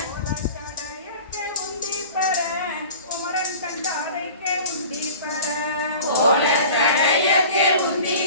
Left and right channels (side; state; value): both; inverted; correlation -0.41